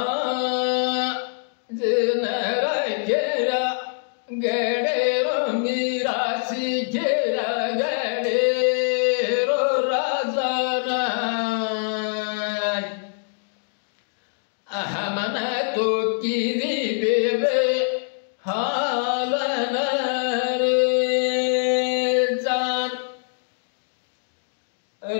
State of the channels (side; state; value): right; silent; digital silence